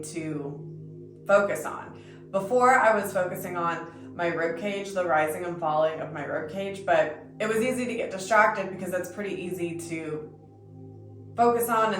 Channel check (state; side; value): identical; both; correlation 1.00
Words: to focus on. Before, I was focusing on my rib cage, the rising and falling of my rib cage, but it was easy to get distracted because that's pretty easy to focus on